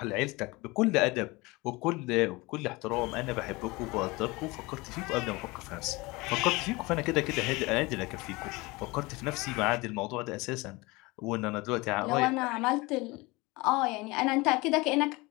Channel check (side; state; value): right; quieter; 23.5 dB